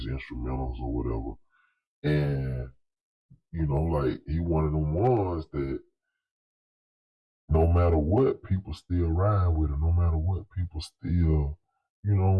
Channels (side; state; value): both; identical; correlation 1.00